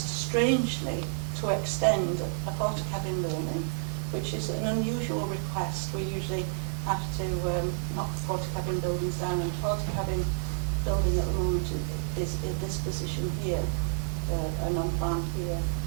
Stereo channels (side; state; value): left; silent; digital silence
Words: strangely to extend a portakabin building, which is an unusual request. We usually have to knock portakabin buildings down, and portakabin building at the moment is in this position here, and on plan here.